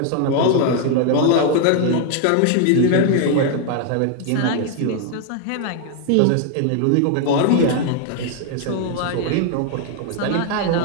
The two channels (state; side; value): different; both; correlation 0.00